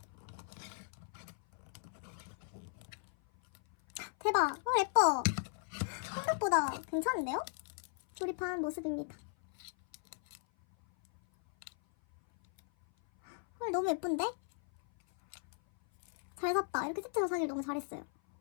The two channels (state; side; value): silent; right; 53 dB below the other